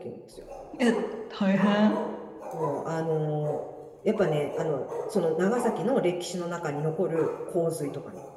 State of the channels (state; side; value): identical; both; correlation 1.00